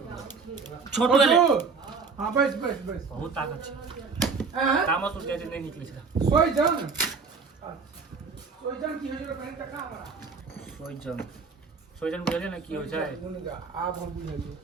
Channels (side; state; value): left; quieter; 5.0 dB